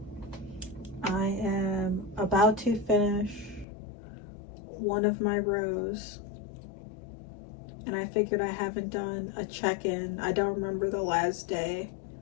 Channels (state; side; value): drops out; right; at 3.7 s